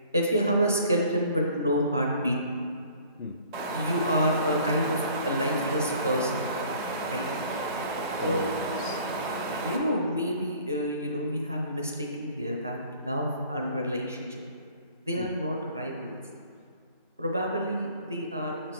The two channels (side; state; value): both; inverted; correlation -0.52